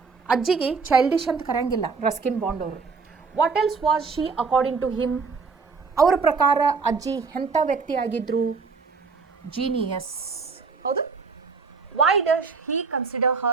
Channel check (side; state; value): left; quieter; 4.8 dB